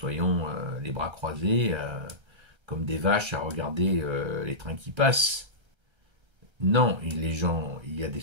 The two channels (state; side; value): late; left; 1.3 ms